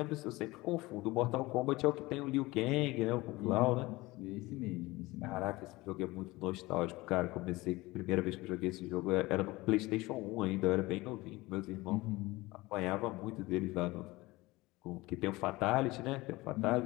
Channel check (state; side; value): quieter; right; 20.8 dB